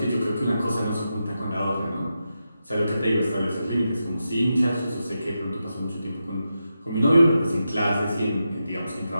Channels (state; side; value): inverted; both; correlation -0.88